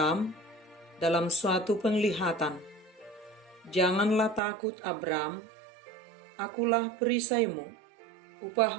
dalam suatu penglihatan. Janganlah takut, Abram, akulah perisaimu,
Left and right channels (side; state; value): left; drops out; at 4.4 s